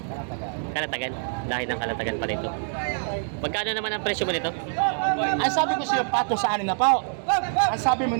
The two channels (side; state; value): left; silent; digital silence